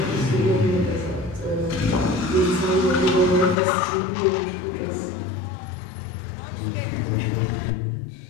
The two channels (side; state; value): right; drops out; at 3.6 s